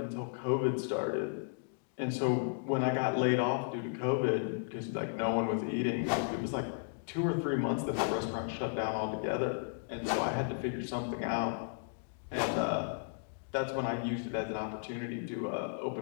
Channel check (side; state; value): right; silent; digital silence